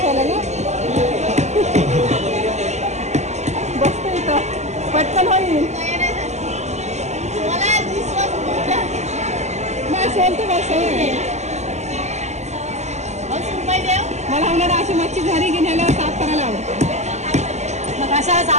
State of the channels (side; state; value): left; late; 0.33 ms